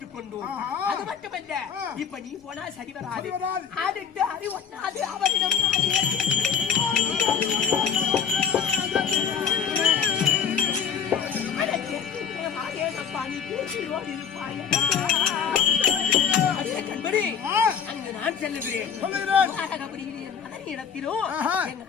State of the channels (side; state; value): right; quieter; 7.2 dB